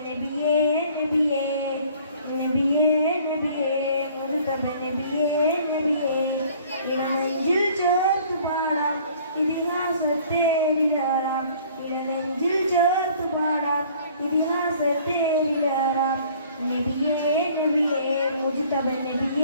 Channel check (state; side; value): inverted; both; correlation -0.54